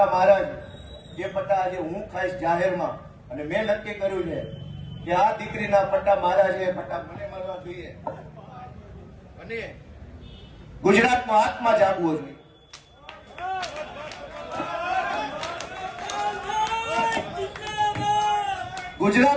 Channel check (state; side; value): identical; both; correlation 1.00